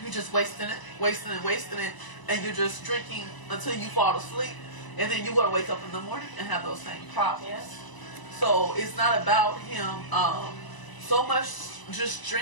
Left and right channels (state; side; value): late; right; 1.0 ms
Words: you're just wasting it, and you're just drinking until you fall asleep. And then you're going to wake up in the morning and have those same problems. Yes. So it's not about him so much just